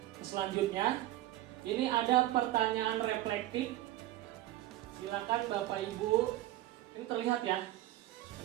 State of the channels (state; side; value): quieter; left; 15.2 dB